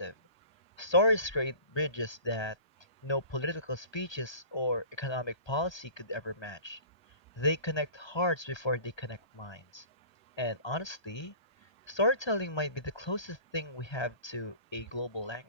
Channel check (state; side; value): late; right; 1.3 ms